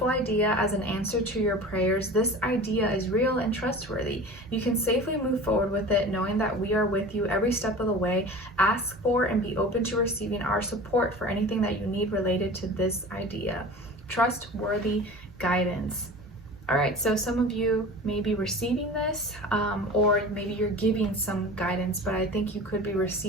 idea as an answer to your prayers. This idea is real and trustworthy. You can safely move forward with it, knowing that we are with you every step of the way. Ask for and be open to receiving our support for anything that you need related to this idea. Trustworthy guidance. All right, so some of you may be receiving this, or maybe you're giving some guidance, but I think you could be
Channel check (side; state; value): both; normal; correlation 0.37